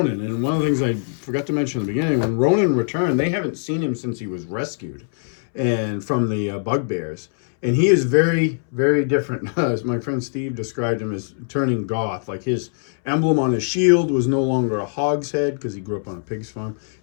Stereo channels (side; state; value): right; silent; 64 dB below the other